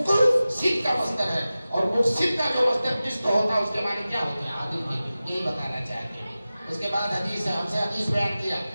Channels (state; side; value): inverted; both; correlation -0.95